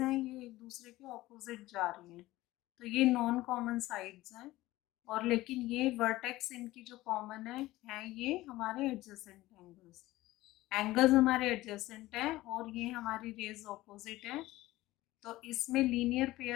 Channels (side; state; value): right; quieter; 17.5 dB